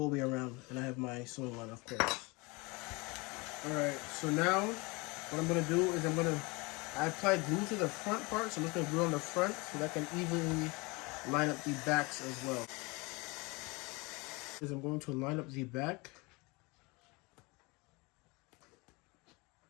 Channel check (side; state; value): right; quieter; 26.3 dB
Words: around. And I have my sewing line, of course. All right, so now what I'm gonna do is I applied glue to the front part, so I'm just gonna glue on the front so that I can evenly line up the backs as well. I'm going to line up the back.